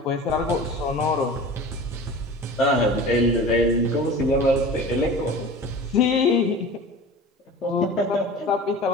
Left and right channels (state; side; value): normal; both; correlation 0.37